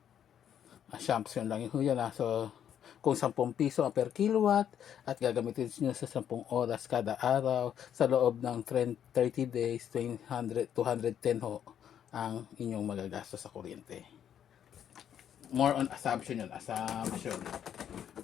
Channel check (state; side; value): quieter; right; 9.4 dB